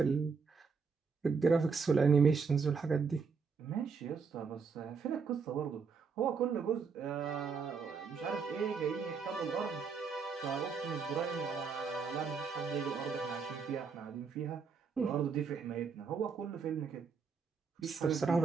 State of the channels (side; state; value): left; quieter; 5.4 dB